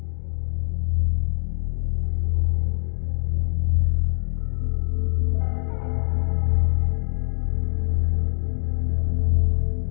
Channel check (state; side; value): silent; right; 63 dB below the other